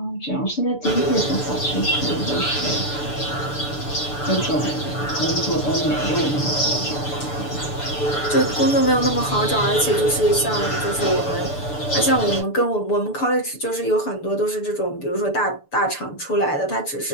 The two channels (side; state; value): right; late; 6.9 ms